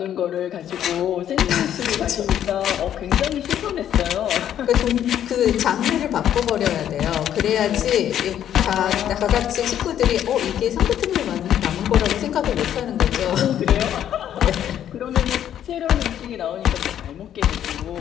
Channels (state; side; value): quieter; right; 10.4 dB